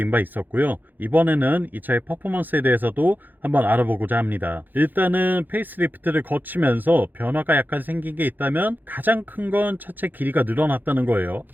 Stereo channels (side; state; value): left; late; 0.087 ms